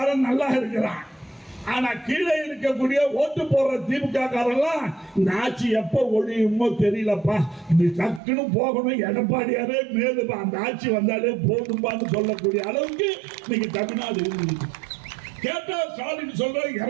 நல்லா இருக்கிறான். ஆனா கீழே இருக்கக்கூடிய ஓட்டு போடுற திமுக காரெல்லாம் இந்த ஆட்சி எப்ப ஒழியுமோ தெரியலப்பா, இது டக்குன்னு போகணும், எடப்பாடியாரே மேலுப்பா, அந்த ஆட்சி வந்தாலே போதும்பான்னு சொல்லக்கூடிய அளவுக்கு இன்னைக்கு தமிழ்நாடு இருக்குது. கேட்டா ஸ்டாலின் சொல்ற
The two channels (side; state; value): left; drops out; at 8.2 s